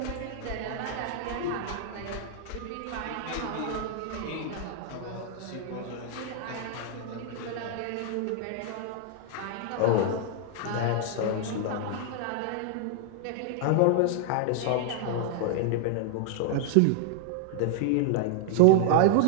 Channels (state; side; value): different; both; correlation -0.01